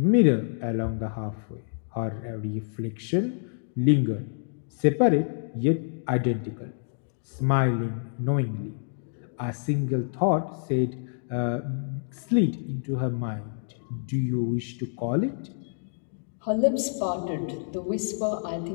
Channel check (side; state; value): right; silent; digital silence